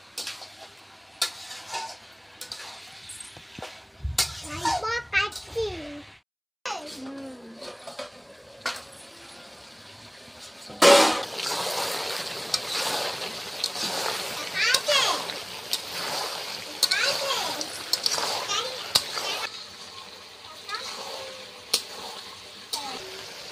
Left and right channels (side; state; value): both; identical; correlation 1.00